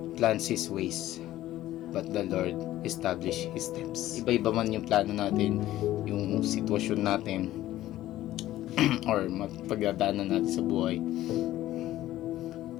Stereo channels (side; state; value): right; quieter; 14.6 dB